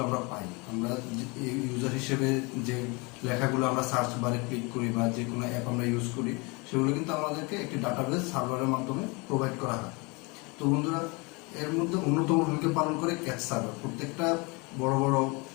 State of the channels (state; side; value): quieter; right; 28.2 dB